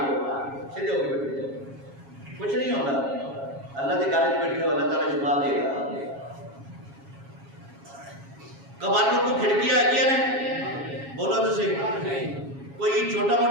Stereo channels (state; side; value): late; left; 7.3 ms